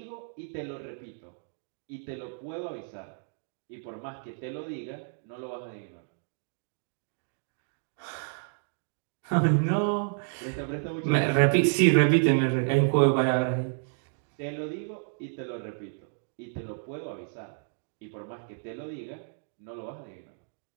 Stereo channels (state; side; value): silent; left; digital silence